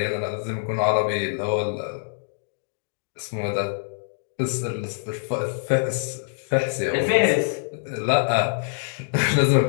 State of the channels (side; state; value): right; silent; digital silence